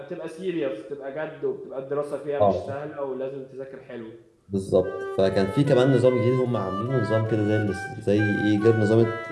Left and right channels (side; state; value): both; identical; correlation 1.00